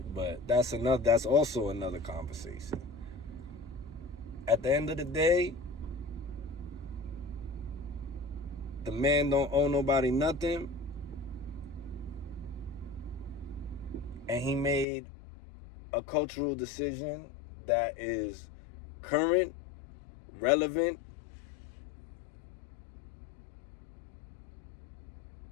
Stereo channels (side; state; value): right; drops out; at 14.9 s